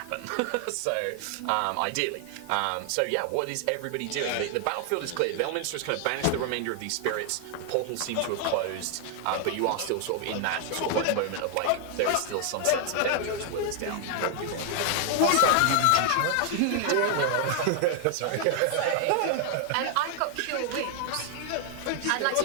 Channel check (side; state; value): both; different; correlation 0.00